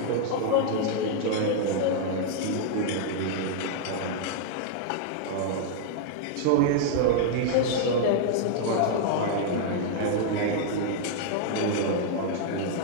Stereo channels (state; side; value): different; both; correlation -0.01